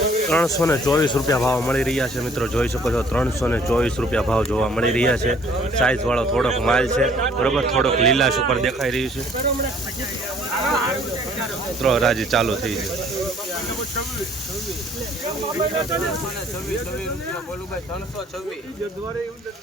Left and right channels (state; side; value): normal; both; correlation 0.58